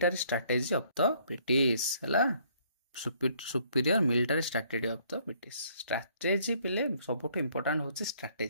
strategy of the British हला superior military strategy of the British strategy पिले सबुठ इंपोर्टेंट होचे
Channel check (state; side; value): inverted; both; correlation -0.64